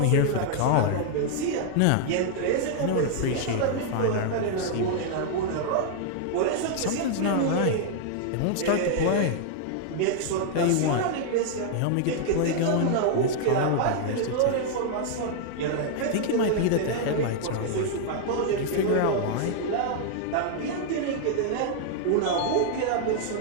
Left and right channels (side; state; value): both; different; correlation -0.01